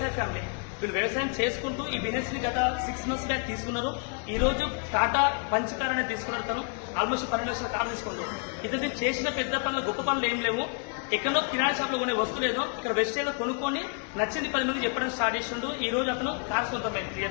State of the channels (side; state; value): right; quieter; 40.0 dB